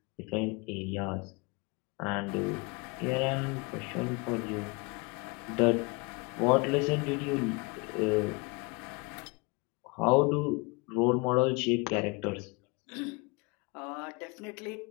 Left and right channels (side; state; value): right; quieter; 28.8 dB